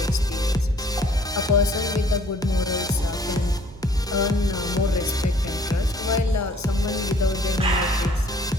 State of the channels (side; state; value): both; normal; correlation 0.58